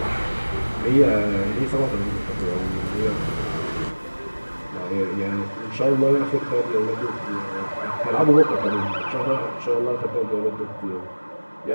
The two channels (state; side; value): inverted; both; correlation -1.00